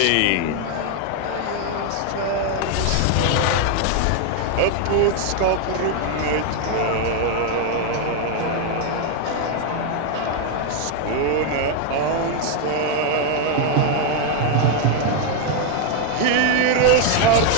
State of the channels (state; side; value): different; both; correlation 0.01